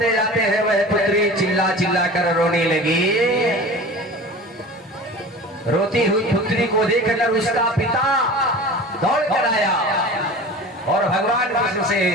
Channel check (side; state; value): both; normal; correlation 0.37